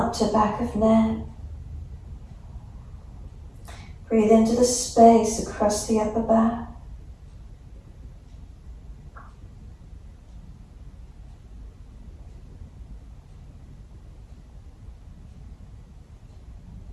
to back of neck. Breathe into the space across the upper back.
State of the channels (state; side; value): identical; both; correlation 1.00